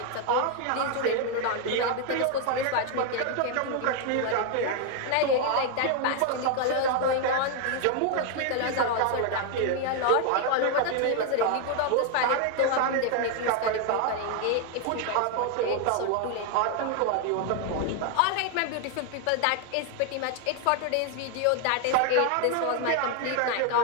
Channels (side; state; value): both; different; correlation 0.01